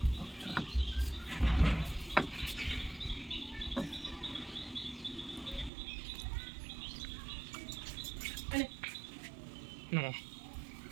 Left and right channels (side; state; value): left; drops out; at 5.7 s